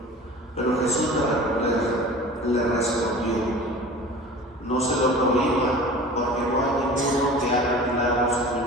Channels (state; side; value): normal; both; correlation 0.40